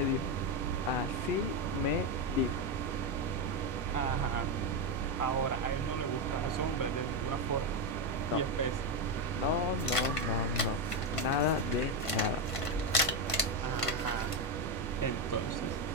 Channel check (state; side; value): late; right; 1.5 ms